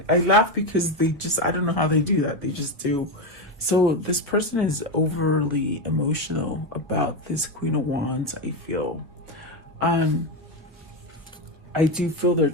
I laugh because I don't know how they do that. They just do. So this person is overly emotional about this Queen of Wands, I feel. I do feel they're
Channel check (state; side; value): normal; both; correlation 0.11